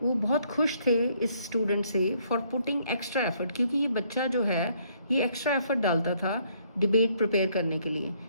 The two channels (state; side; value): inverted; both; correlation -0.68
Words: वो बहुत खुश थे इस student से for putting extra effort, क्योंकि ये बच्चा जो है ये एक्स्ट्रा एफर्ट डालता था डिबेट प्रिपेयर करने के लिए।